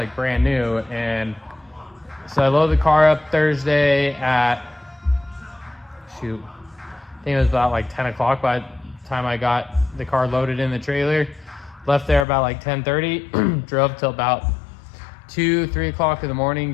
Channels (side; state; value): right; drops out; at 12.2 s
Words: brand new. And so I loaded the car up Thursday at, I think it was about 10 o'clock by the time I got the car loaded in the trailer. Left there about 10:30, drove till about 2-3 o'clock in the